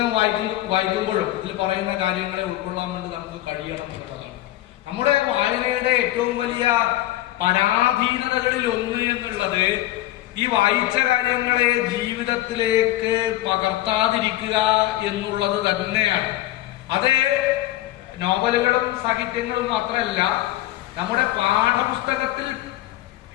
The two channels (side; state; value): right; quieter; 15.4 dB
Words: വായിക്കുമ്പോഴും ഇതിൽ പറയുന്ന കാര്യങ്ങളെ ഉൾക്കൊള്ളാൻ വേണ്ടി നമുക്ക് കഴിയണം എന്നുള്ളതാണ്. നമ്മുടെ വായനയുടെ ഏറ്റവും വലിയ പരാധീനതകളിൽ ഒന്ന് എന്നുള്ളത് ഈ വായിച്ച കാര്യങ്ങളെ ജീവിതത്തിലേക്ക് പകർത്താതിരിക്കുക എന്നുള്ളത് തന്നെയാണ്. അത് നോവലുകളും സാഹിത്യങ്ങളും മാത്രമല്ല, നമ്മുടെ പാഠപുസ്തകത്തിൽ